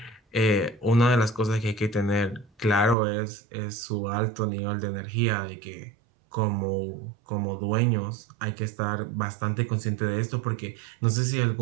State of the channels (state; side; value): drops out; left; at 3.0 s